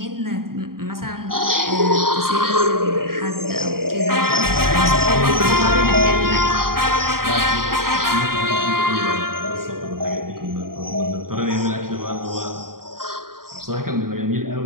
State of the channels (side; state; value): left; late; 0.92 ms